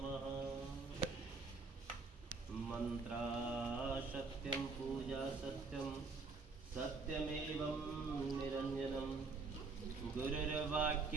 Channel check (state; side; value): quieter; left; 4.2 dB